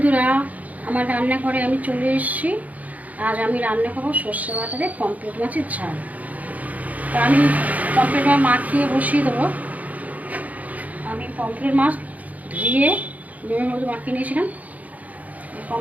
আমার রান্নাঘরে আমি চলে এসেছি। আজ আমি রান্না করবো সর্ষে বাটা দিয়ে পমফ্রেট মাছের ঝাল। তা আমি পমফ্রেট মাছ মাখিয়ে বসিয়ে দেবো। আমি পমফ্রেট মাছ ধুয়ে নুনের মধ্যে মাখিয়ে নিয়েছিলাম।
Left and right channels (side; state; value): left; late; 0.075 ms